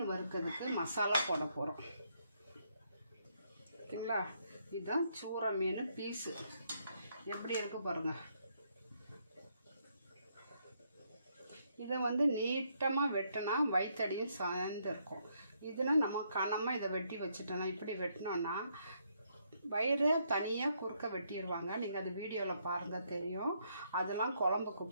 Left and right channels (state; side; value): inverted; both; correlation -0.74